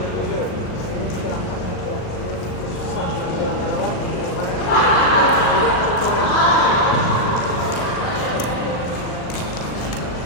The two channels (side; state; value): right; late; 39 ms